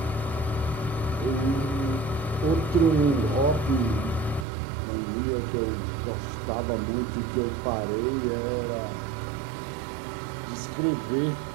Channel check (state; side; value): drops out; left; at 4.5 s